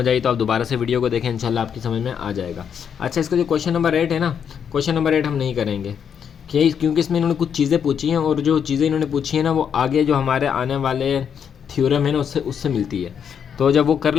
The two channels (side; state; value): right; quieter; 7.8 dB